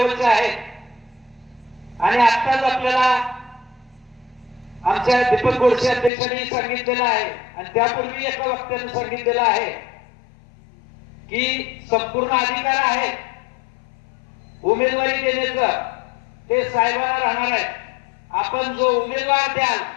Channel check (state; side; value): drops out; right; at 6.1 s